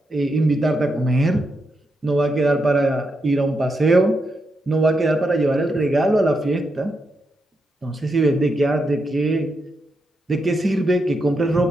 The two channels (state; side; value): normal; both; correlation 0.84